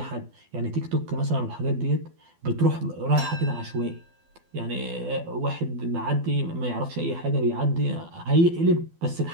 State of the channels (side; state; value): left; late; 12 ms